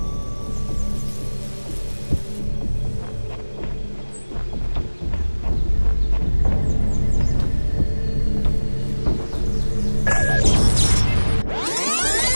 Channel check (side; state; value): both; inverted; correlation -1.00